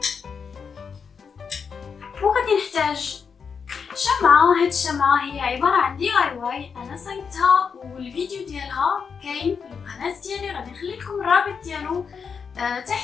وغادي نحتاج شمعة. هاد الشمعة هي عبارة عن دي اي واي انا صايبتها والفيديو ديالها كاين في القناة ديالي، غادي نخلي لكم الرابط ديالو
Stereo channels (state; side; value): quieter; right; 6.1 dB